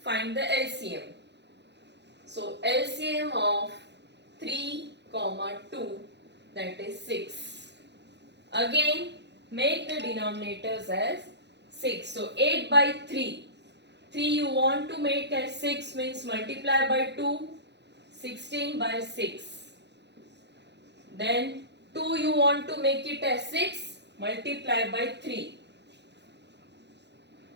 find the LCM. So LCM of 3, 2, that is 6. Again, make the denominators as 6. So 8 by 3. 3 you want to make as 6 means multiply by 2. 16 by 6. Then 2 you want to make it as 6. Multiply by 3.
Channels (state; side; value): late; left; 0.50 ms